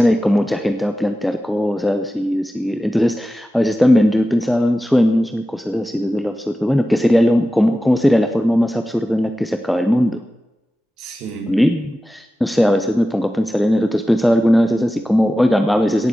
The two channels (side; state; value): both; normal; correlation 0.94